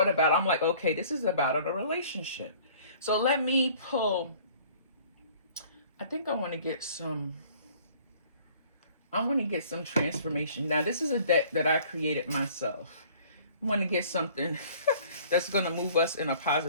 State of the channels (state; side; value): inverted; both; correlation -0.53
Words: about it, I'm like, okay, this is about a relationship. So let me pull, I think I want to get some I want to get some transformation. Now, this is a deck that I created myself. I want to get something that's going to move us in a